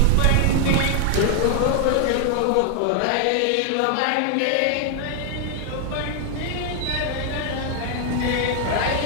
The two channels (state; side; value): different; both; correlation 0.00